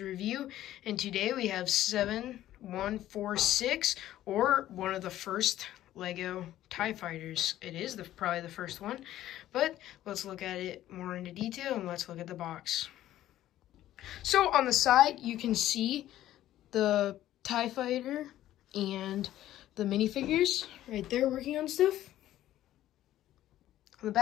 and today we have 7146, or one of the first Lego TIE Fighters. It is probably the first one, but let's look at it more into detail, and let's look at the box. So on the side, you can see the TIE Fighter and the minifigures right there working on stuff. On the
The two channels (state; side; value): quieter; right; 13.4 dB